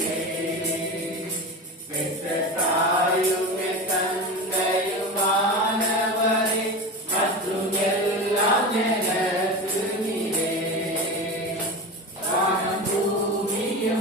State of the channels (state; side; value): normal; both; correlation 0.26